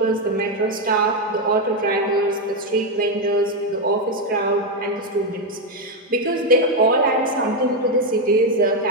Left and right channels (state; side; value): normal; both; correlation 0.05